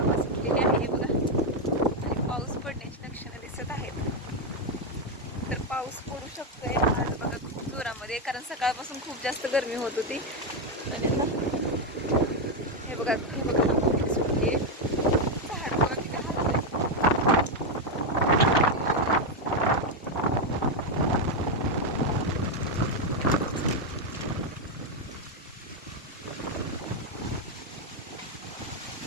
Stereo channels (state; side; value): normal; both; correlation 0.05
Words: सुटलेली आहे बघा, आणि पाऊस पडण्याची लक्षणं दिसत आहेत. तर पाऊस पडू शकतोय आज बघा खूप जोरामध्ये, कारण सकाळपासून खूप जास्त गरमी होत होती. आणि हे बघा हवा किती सुटली आहे. झाड बघा किती हलतंय.